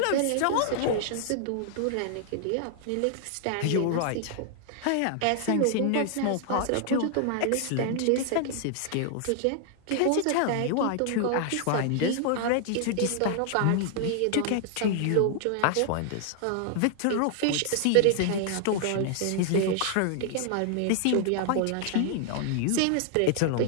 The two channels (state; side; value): different; both; correlation 0.00